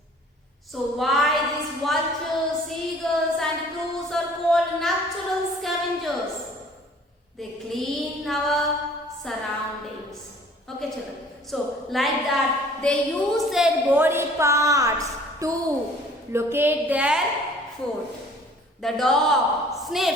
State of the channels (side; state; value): both; normal; correlation 0.52